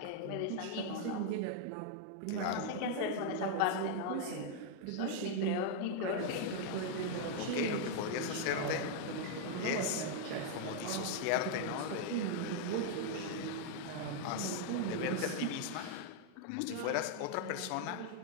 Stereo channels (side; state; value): both; different; correlation 0.00